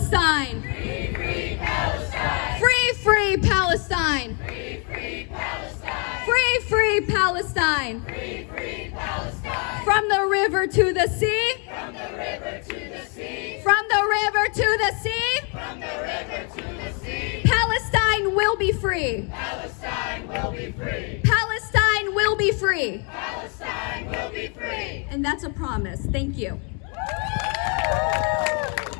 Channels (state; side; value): quieter; right; 36.8 dB